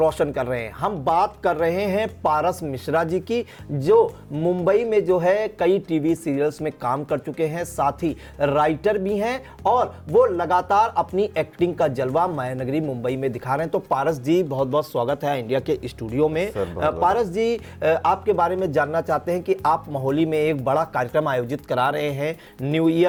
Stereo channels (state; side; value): identical; both; correlation 1.00